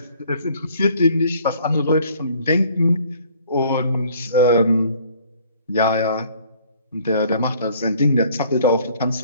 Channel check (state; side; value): inverted; both; correlation -0.57